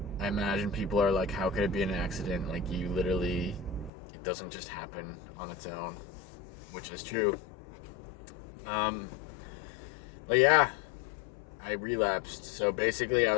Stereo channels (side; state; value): right; drops out; at 3.9 s